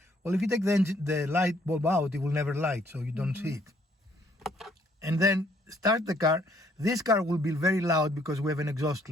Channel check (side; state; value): both; normal; correlation 0.65